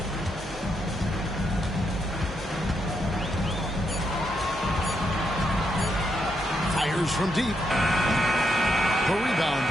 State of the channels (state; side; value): normal; both; correlation 0.80